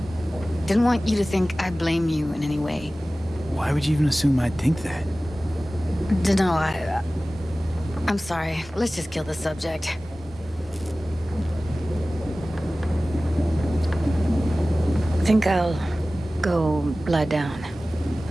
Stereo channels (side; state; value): both; normal; correlation 0.97